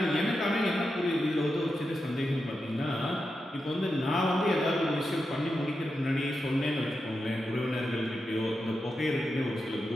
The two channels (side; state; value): both; normal; correlation 0.88